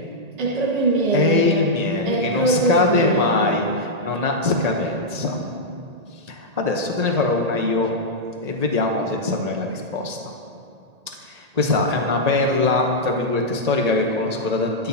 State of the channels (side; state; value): left; late; 1.8 ms